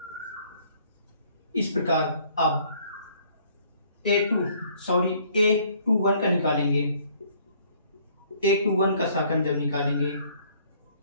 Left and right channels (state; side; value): inverted; both; correlation -0.60